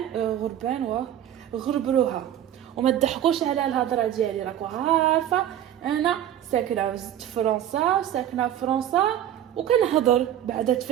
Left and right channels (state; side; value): quieter; left; 11.2 dB